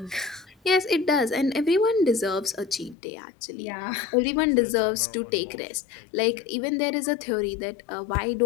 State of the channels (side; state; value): right; drops out; at 3.0 s